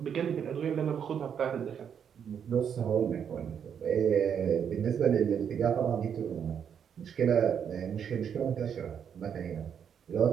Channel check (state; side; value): quieter; left; 7.9 dB